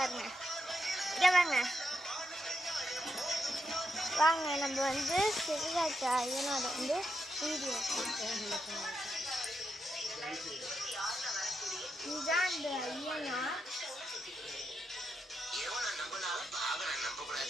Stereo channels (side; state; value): both; normal; correlation 0.84